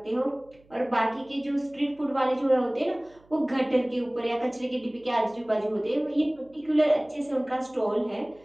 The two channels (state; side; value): noise; right; hum, 30 dB below the sound